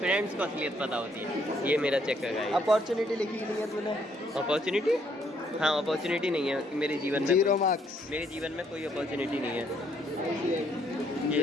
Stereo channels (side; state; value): both; normal; correlation 0.69